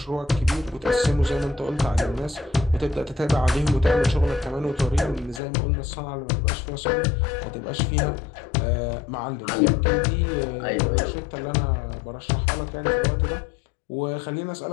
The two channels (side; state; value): right; drops out; at 5.4 s